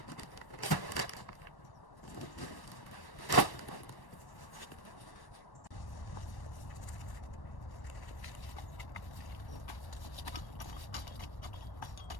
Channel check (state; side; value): late; right; 1.1 ms